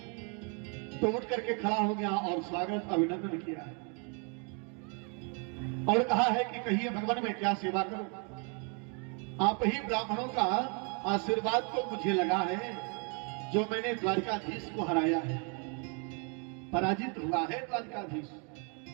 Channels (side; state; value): left; quieter; 36.9 dB